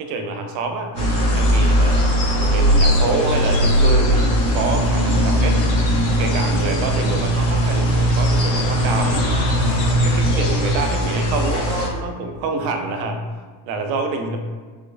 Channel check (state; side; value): late; left; 17 ms